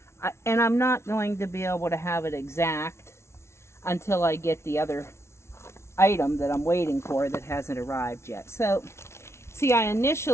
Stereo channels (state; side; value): late; right; 0.13 ms